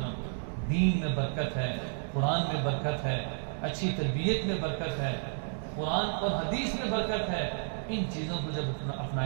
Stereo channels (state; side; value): silent; left; digital silence